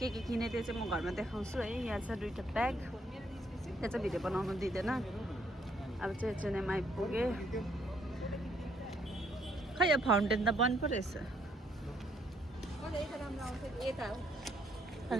किने त्यो चाहिँ म घरमा देखाउँछु है यहाँ छ 2टा ब्याग त्यहाँ चाहिँ भिडियो बनाउनु दिँदैन अब चाहिँ एचएनएम आइपुगेँ खै यो फाउन्टेन त बन्द पो रहेछ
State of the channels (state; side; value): normal; both; correlation 0.70